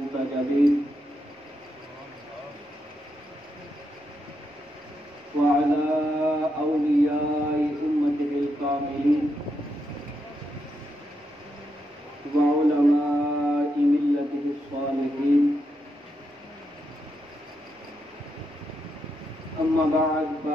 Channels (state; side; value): normal; both; correlation 0.82